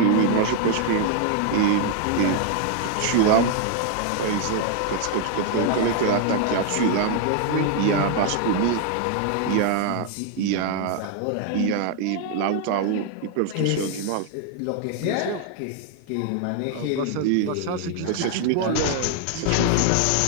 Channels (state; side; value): different; both; correlation 0.00